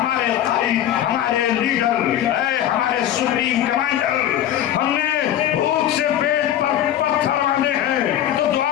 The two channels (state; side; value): quieter; right; 11.5 dB